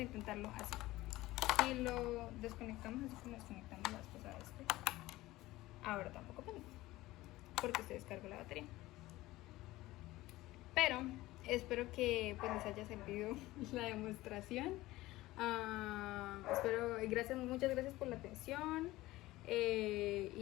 intentarlo así. Si lo desconectamos así como desconectamos la vez pasada ahora tampoco prende, porque se descargó la batería. Pero espero que pues les haya servido la demostración. Muchas gracias por la atención.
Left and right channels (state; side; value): quieter; right; 17.9 dB